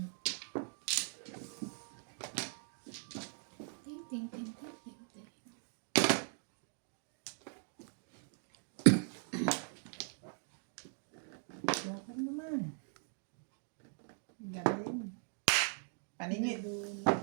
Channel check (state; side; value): silent; left; 51 dB below the other